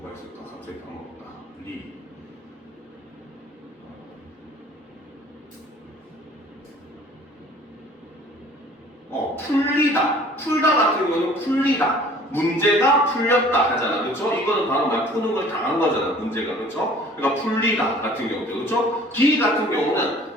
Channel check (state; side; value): normal; both; correlation 0.51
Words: 있을까? 갑자기 까먹었다. 풀리다. 풀다 같은 경우는 풀리다. 문제가 풀렸다 하잖아. 그렇죠? 이거는 바로 말 푸는 걸 당한 거잖아. 문제가. 그렇죠? 그러니까 풀리다 같은 경우도. 그렇죠? 기 같은 경우는